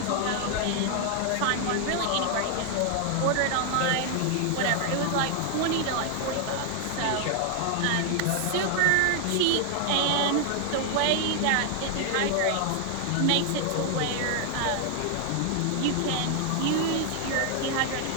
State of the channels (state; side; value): different; both; correlation 0.00